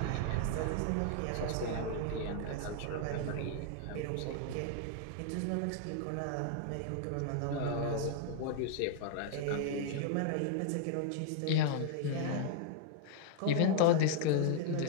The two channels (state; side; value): different; both; correlation 0.00